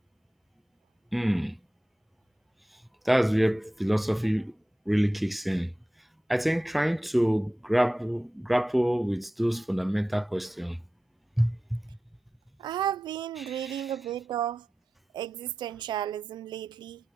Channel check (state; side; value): normal; both; correlation 0.94